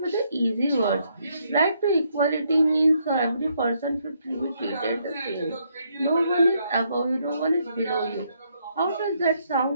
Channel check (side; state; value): both; inverted; correlation -0.73